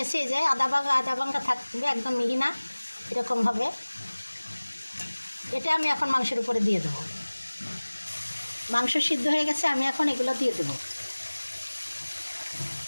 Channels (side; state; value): both; inverted; correlation -1.00